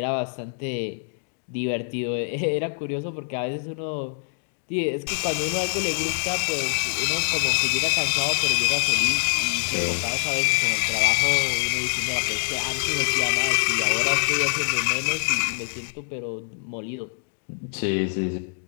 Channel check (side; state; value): right; silent; digital silence